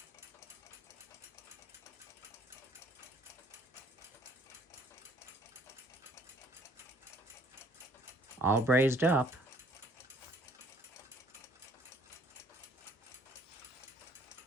All brazed up.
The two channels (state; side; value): normal; both; correlation 0.59